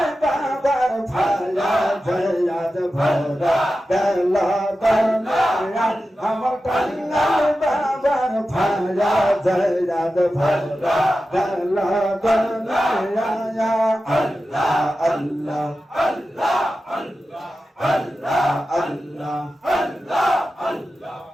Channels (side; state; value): both; normal; correlation 0.93